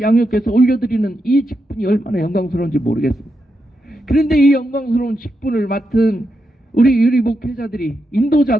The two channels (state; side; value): normal; both; correlation 0.85